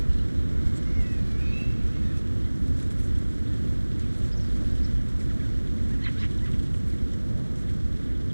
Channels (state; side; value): inverted; both; correlation -1.00